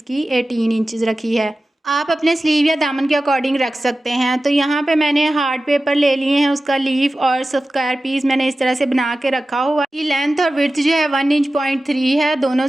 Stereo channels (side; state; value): both; normal; correlation 0.95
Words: 18 इंचज़ रखी है। आप अपने स्लीव या दामन के अकॉर्डिंग रख सकते हैं। तो यहाँ पे मैंने हार्ड पेपर ले लिए हैं, उसका लीफ और स्क्वायर पीस मैंने इस तरह से बना के रखा हुआ है। ये लेंथ और विड्थ जो है 1.3 इंच है, दोनों